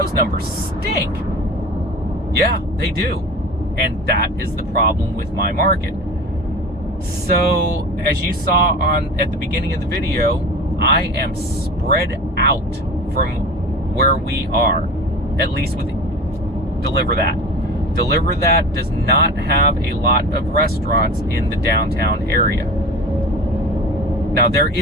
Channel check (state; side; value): normal; both; correlation 0.34